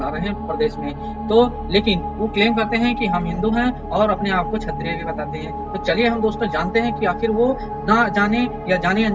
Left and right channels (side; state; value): both; identical; correlation 1.00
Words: ला रहे हैं प्रदेश में। तो लेकिन वो क्लेम करते हैं कि हम हिंदू हैं और अपने आप को क्षत्रिय भी बताते हैं। तो चलिए हम दोस्तों जानते हैं कि आखिर वो ना जाने या जाने